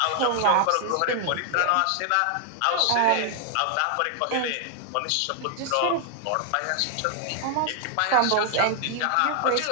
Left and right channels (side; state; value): both; different; correlation 0.00